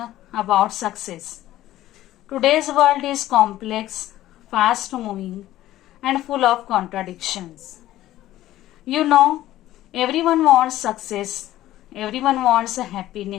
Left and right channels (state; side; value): quieter; right; 14.4 dB